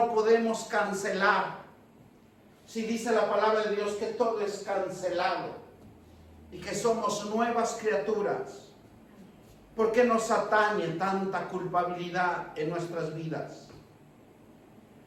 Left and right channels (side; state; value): both; identical; correlation 1.00